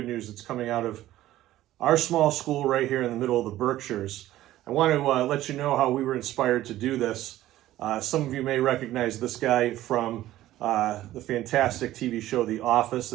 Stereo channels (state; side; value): quieter; left; 14.6 dB